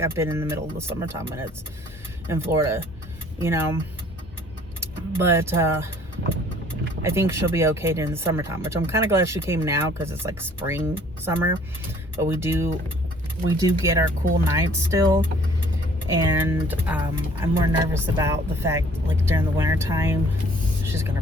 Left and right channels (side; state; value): both; normal; correlation 0.56